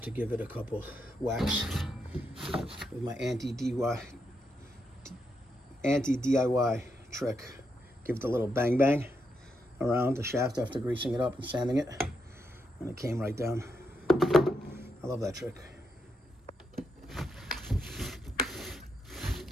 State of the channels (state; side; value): normal; both; correlation 0.81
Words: to give it a couple whacks with my anti-DIY trick. Give it a little bang bang around the shaft after greasing it up and sanding it. And it came right down. I love that trick.